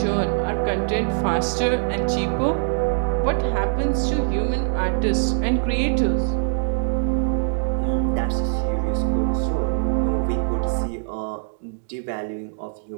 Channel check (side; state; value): left; silent; digital silence